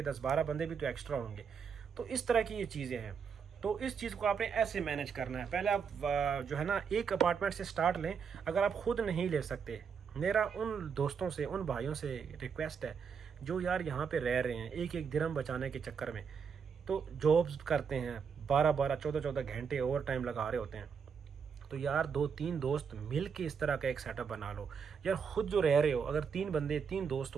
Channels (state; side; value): quieter; left; 6.5 dB